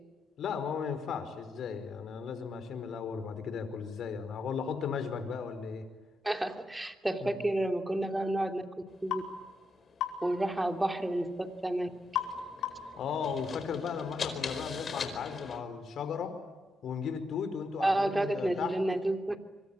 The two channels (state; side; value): normal; both; correlation 0.82